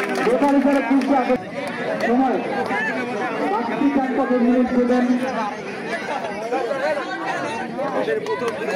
বেকারি করে সময় মিনিট দেবেন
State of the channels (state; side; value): identical; both; correlation 1.00